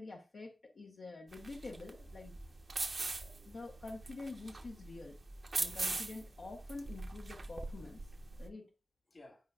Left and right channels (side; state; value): both; normal; correlation 0.94